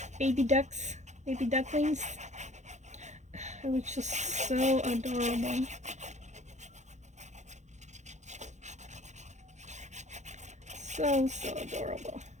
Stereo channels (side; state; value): left; late; 0.34 ms